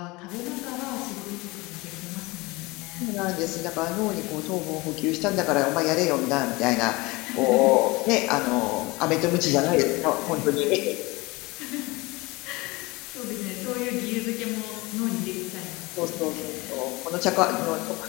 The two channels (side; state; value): right; quieter; 23.4 dB